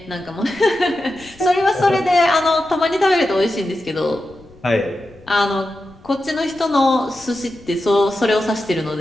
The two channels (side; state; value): left; noise; rumble, 25 dB below the sound